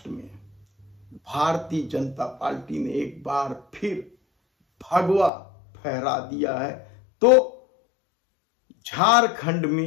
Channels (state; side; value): drops out; right; at 5.3 s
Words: में भारतीय जनता पार्टी ने एक बार फिर भगवा फहरा दिया है। तो झारखंड